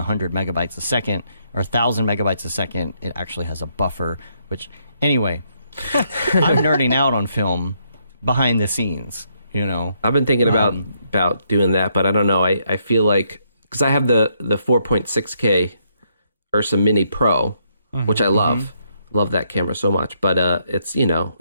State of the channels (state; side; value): inverted; both; correlation -0.74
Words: megabytes a second or 1,000 megabytes a second, it actually has a buffer, which, anyway, I'm nerding out on film behind the scenes, I've been thinking about doing that, but I don't know. I feel like, because I have the 4.6K Ursa Mini Pro, which I love. Love that camera so much. But